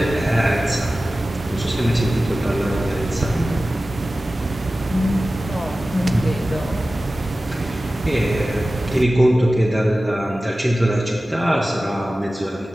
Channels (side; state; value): both; normal; correlation 0.95